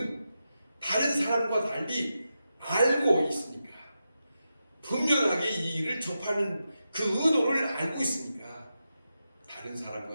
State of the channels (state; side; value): inverted; both; correlation -0.89